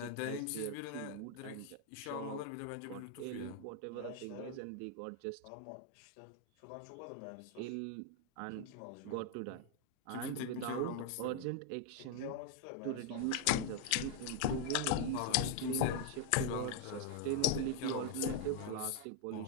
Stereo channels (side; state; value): both; different; correlation 0.00